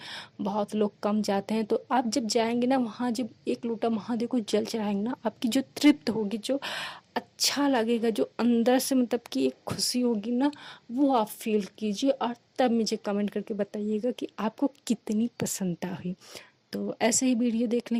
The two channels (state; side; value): identical; both; correlation 1.00